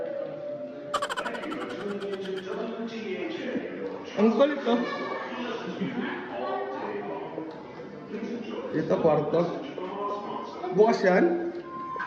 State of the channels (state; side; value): identical; both; correlation 1.00